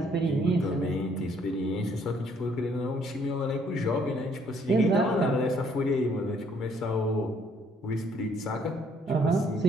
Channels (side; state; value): both; normal; correlation 0.65